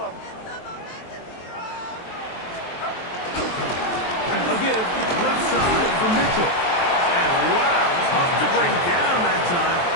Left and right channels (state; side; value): late; right; 23 ms